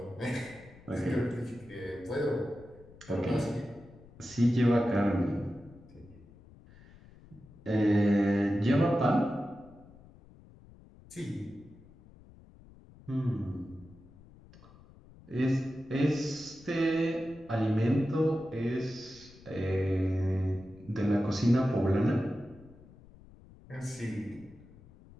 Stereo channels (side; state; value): left; noise; rumble, 23 dB below the sound